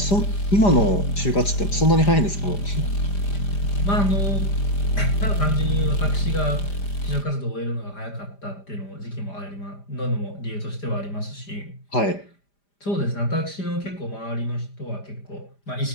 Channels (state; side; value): late; right; 5.0 ms